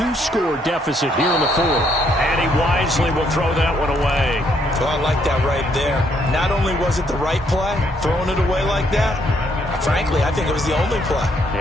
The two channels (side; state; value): both; normal; correlation 0.71